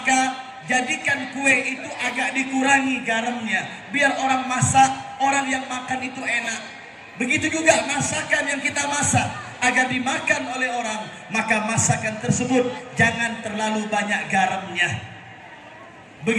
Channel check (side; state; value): both; identical; correlation 1.00